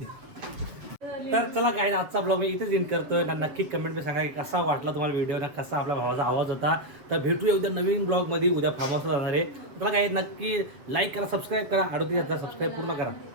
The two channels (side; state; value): left; late; 7.4 ms